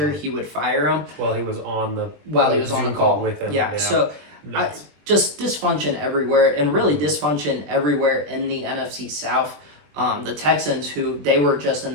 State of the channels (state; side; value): late; left; 20 ms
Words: he would fire him. Well, he was on the Zoom call with him. Yeah. So just dysfunction everywhere, and really dysfunction everywhere in the NFC South. The Texans, who they were just